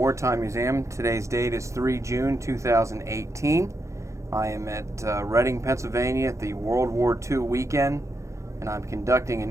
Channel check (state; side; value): late; left; 0.15 ms